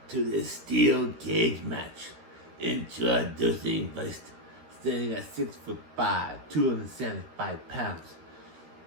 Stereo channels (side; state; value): left; late; 13 ms